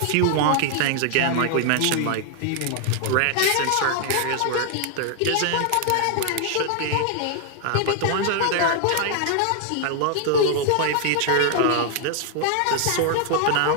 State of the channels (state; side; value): different; both; correlation 0.00